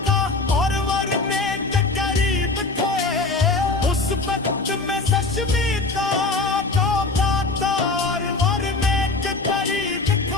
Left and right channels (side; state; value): right; quieter; 3.5 dB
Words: اور ورنے کے قریب تھے۔ اس وقت میں سشمی کا کاٹا اور ورنے کے قریب